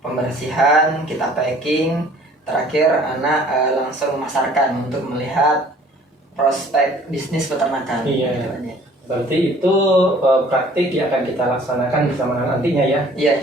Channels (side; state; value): both; normal; correlation 0.54